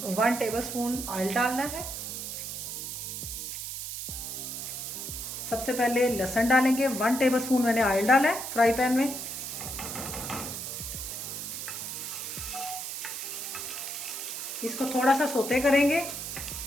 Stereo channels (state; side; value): noise; right; hiss, 6 dB below the sound